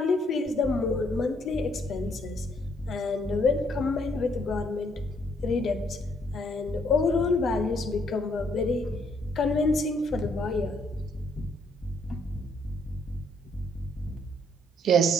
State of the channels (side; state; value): both; normal; correlation 0.69